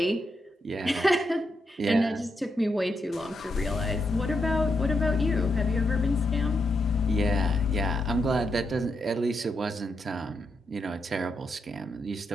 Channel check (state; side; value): normal; both; correlation 0.82